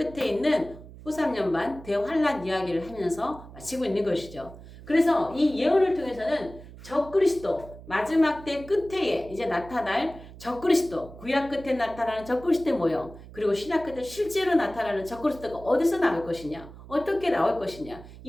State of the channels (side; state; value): right; noise; hum, 17 dB below the sound